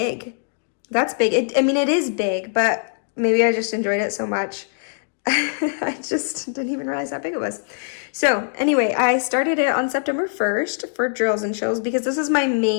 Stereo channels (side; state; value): right; silent; digital silence